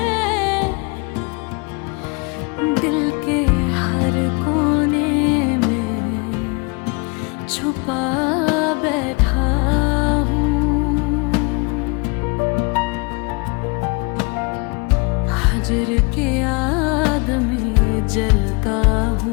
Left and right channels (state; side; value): quieter; right; 30.8 dB